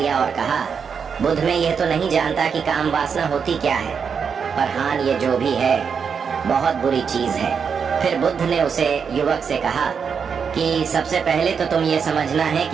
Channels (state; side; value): quieter; left; 6.4 dB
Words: और कहा, बुद्ध, मैं यह तो नहीं जानता कि काम वासना होती क्या है, पर हाँ, ये जो भी है बहुत बुरी चीज है। फिर बुद्ध ने उसे युवक से कहा कि सबसे पहले तो तुम ये समझना है